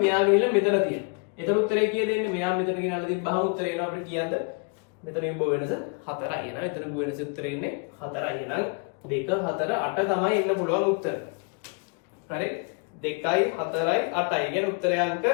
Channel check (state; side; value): quieter; right; 35.9 dB